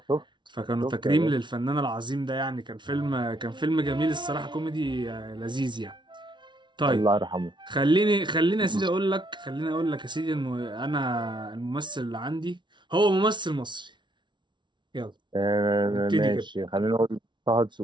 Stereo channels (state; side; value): late; left; 0.23 ms